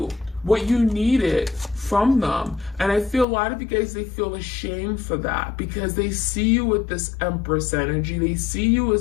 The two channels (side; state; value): right; drops out; at 3.2 s